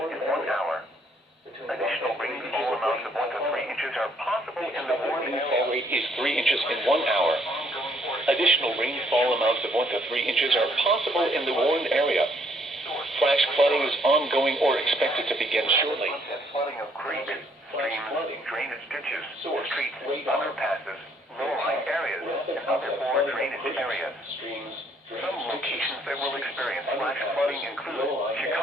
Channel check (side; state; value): both; normal; correlation 0.66